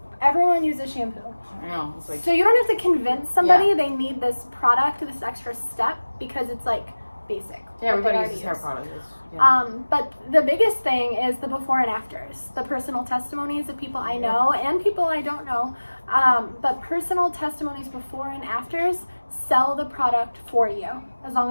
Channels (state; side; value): inverted; both; correlation -1.00